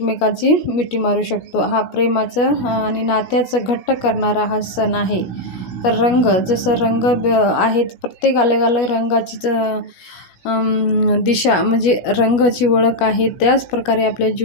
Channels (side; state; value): right; late; 17 ms